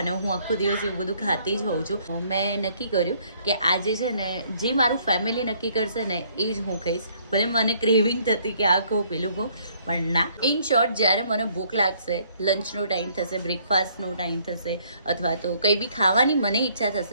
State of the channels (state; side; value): inverted; both; correlation -0.64